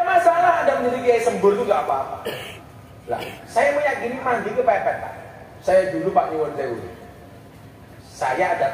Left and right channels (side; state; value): both; identical; correlation 1.00